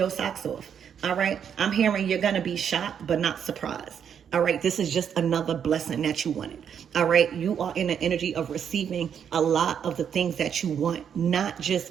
socks off. All right. I'm hearing you're going to be shocked, but not surprised. All right. This is just another blessing that you wanted. All right. You are in the energy of receiving a lot of the things that you want, not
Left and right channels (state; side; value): quieter; left; 8.1 dB